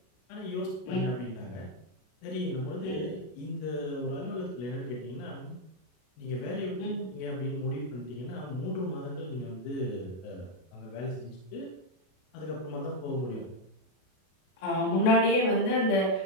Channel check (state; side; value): late; right; 32 ms